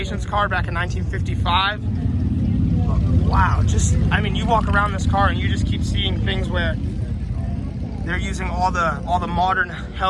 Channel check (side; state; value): both; identical; correlation 1.00